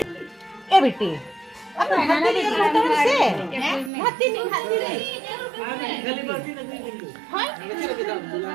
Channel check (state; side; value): drops out; left; at 3.9 s